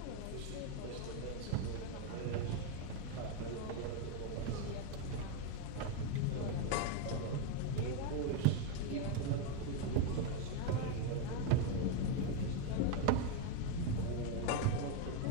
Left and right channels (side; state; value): both; different; correlation 0.02